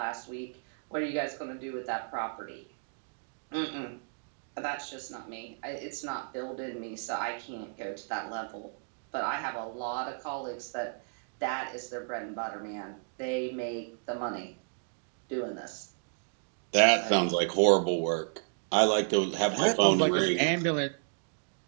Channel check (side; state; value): left; silent; digital silence